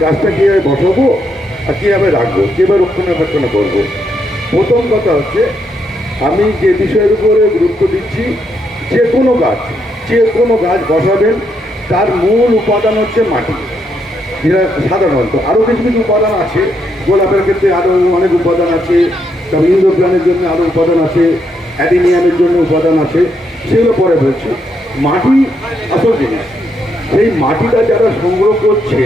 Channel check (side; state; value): both; normal; correlation 0.78